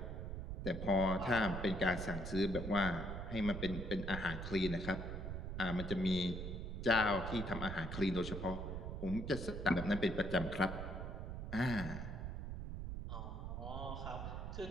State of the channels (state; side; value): noise; right; rumble, 5 dB below the sound